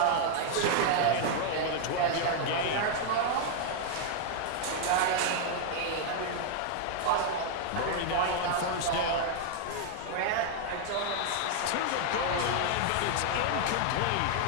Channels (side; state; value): both; different; correlation 0.00